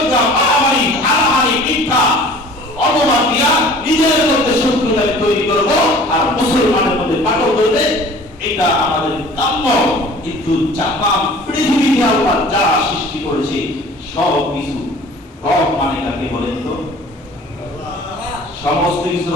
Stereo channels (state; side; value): normal; both; correlation 0.47